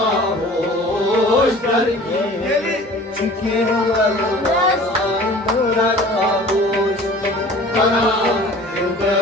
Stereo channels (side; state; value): both; normal; correlation 0.45